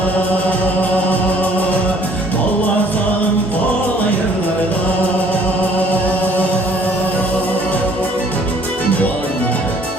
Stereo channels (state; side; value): normal; both; correlation 0.58